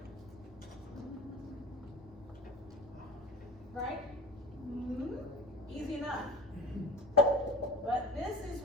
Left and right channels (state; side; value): normal; both; correlation 0.35